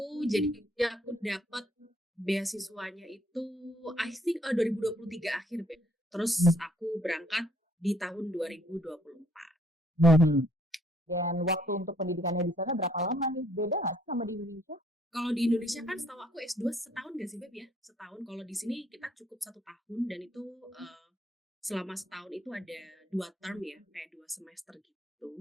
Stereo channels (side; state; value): both; normal; correlation 0.65